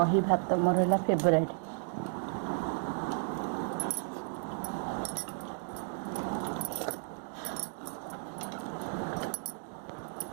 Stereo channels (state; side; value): silent; left; digital silence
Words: भात मोर है फेवरेट